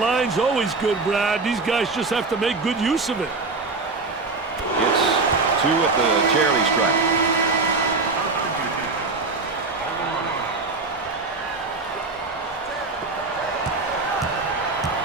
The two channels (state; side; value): quieter; left; 3.8 dB